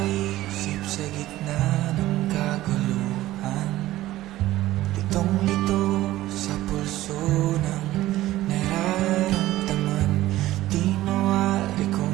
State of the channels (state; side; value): quieter; left; 15.6 dB